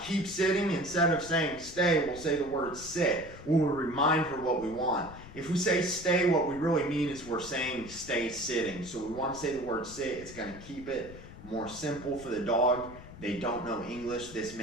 keep sitting, instead of saying stay, we'll say the word sit. We'll remind her what we want. If we say stay, what we really mean is we're saying stay sitting. So we want to say the word sit. It's going to keep it more simple for the dog. They don't know English. This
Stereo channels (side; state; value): left; noise; rumble, 17 dB below the sound